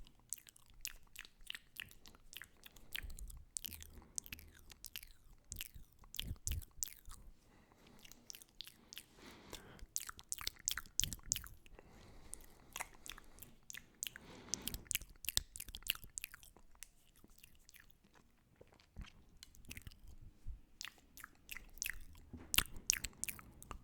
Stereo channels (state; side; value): identical; both; correlation 1.00